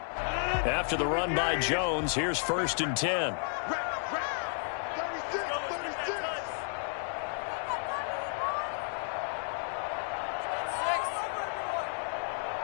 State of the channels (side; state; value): right; silent; 56 dB below the other